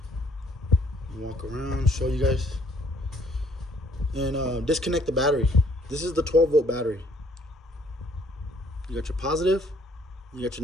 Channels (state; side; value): normal; both; correlation 0.61